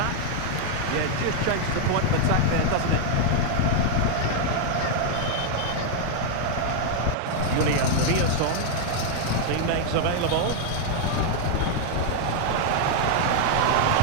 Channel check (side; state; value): both; different; correlation 0.00